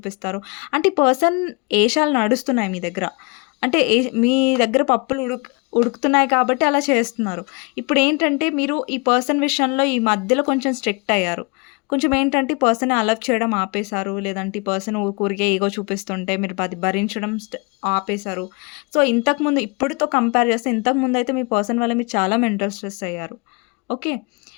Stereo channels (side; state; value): right; quieter; 30.6 dB